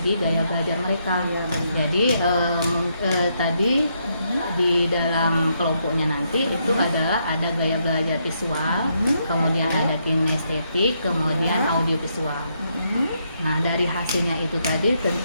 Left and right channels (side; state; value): both; inverted; correlation -0.77